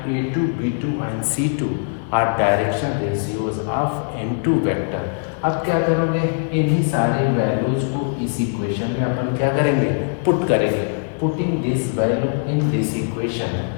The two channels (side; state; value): right; silent; digital silence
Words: a2 b2 and c2 are direction ratios of n2 vector. अब क्या करोगे, इन्हीं सारे वैल्यूज को इस इक्वेशन में अपन क्या करेंगे, पुट करेंगे। Putting this value in this equation,